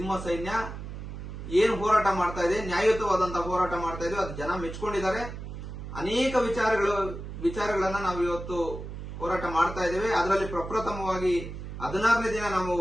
ಸೈನ್ಯ ಏನು ಹೋರಾಟ ಮಾಡ್ತಾ ಇದೆ, ನ್ಯಾಯಯುತವಾದಂತಹ ಹೋರಾಟ ಮಾಡ್ತಾ ಇದೆ, ಅದು ಜನ ಮೆಚ್ಕೊಂಡಿದ್ದಾರೆ. ಅನೇಕ ವಿಚಾರಗಳನ್ನ ನಾವು ಇವತ್ತು ಹೋರಾಟ ಮಾಡ್ತಾ ಇದ್ದೇವೆ. ಅದರಲ್ಲಿ ಪ್ರಪ್ರಥಮವಾಗಿ 16ನೇ ದಿನ ನಾವು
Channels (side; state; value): right; noise; hum, 9 dB below the sound